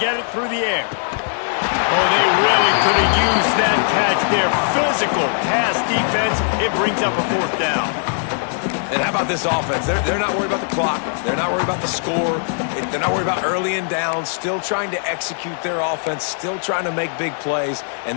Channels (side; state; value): right; silent; digital silence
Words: it through the air. Oh, they really could have used that catch there. Physical pass defense. It brings up a 4th down. And how about this offense? They're not worried about the clock. They're not worried about the score. They're not worried about early and down. Still trying to execute their offense. Still trying to make big plays.